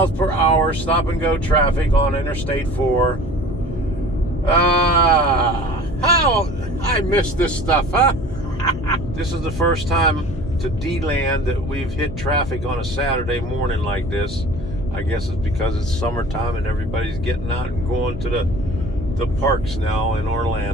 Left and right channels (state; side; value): noise; left; hum, 10 dB below the sound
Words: per hour stop and go traffic on Interstate 4. How I missed this stuff, huh? This is the first time to Deland that we've hit traffic on a Saturday morning like this. I guess it's because it's summertime and everybody's getting out and going to the parks now in